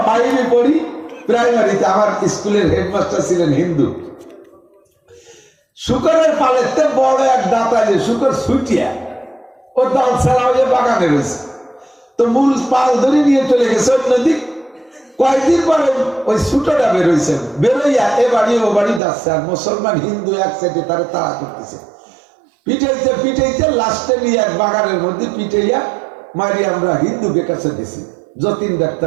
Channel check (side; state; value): left; drops out; at 19.0 s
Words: 5 পড়ি প্রাইমারিতে, আমার স্কুলের হেডমাস্টার ছিলেন হিন্দু। শুকরের পালেতে বড় এক দাঁতা, যে শুকর ছুটিয়া ও দাল ছাড়া হয়ে বাগানে রয়েছে, তো মূল পাল ধরে নিয়ে চলে গেছে অন্যদিক। কয়েকদিন পরে ওই ছুটোটা বেরোইছে, বেরোইয়া এ বাড়ি ও বাড়ি যাচ্ছে, আর মুসলমান হিন্দু এক সাইডে তারা তাড়া করতেছে, পিটাইতে পিটাইতে লাস্টে নিয়ে এক বাগানের মধ্যে পিটাইয়া মারি আমরা হিন্দুকে কাছে দিছি। যতীন